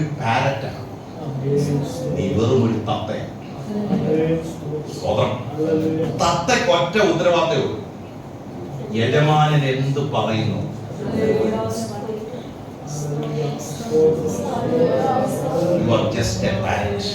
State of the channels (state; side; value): identical; both; correlation 1.00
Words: പാരറ്റാണ്, നീ വെറും ഒരു തത്തയാണ്. തത്തയ്ക്ക് ഒറ്റ ഉത്തരവാദിത്തമേ ഉള്ളൂ, യജമാനൻ എന്ത് പറയുന്നു. You are just a parrot.